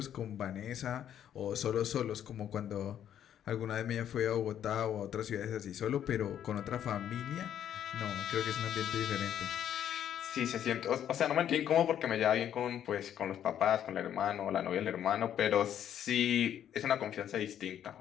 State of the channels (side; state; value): right; quieter; 10.1 dB